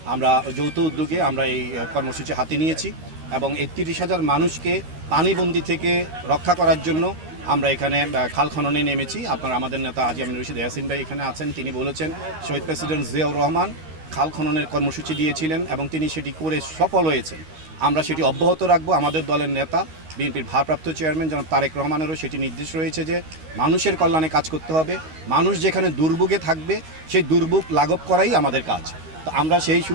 আমরা যৌথ উদ্যোগে আমরা এই কর্মসূচি হাতে নিয়েছি এবং এই ৩০,০০০ মানুষকে পানিবন্দী থেকে রক্ষা করার জন্য আমরা এখানে খাল খননে নেমেছি। আপনারা আমাদের নেতা হাজী আমিনুর রশিদ ইয়াসিন ভাই এখানে আছেন, তিনি বলেছেন শহীদ প্রেসিডেন্ট জিয়াউর রহমান খাল খননের কর্মসূচি দিয়েছিলেন এবং তিনি সেটি করে সফল হয়েছেন। আমরা সেটি অব্যাহত রাখবো। আমাদের দলের নেতা বিএনপির ভারপ্রাপ্ত চেয়ারম্যান জনাব তারেক রহমানেরও সেটি নির্দেশ রয়েছে যে মানুষের কল্যাণে কাজ করতে হবে। মানুষ যেখানে দুর্ভোগে থাকবে সেই দুর্ভোগ লাঘব করাই আমাদের কাজ। তো আমরা সেই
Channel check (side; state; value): left; late; 13 ms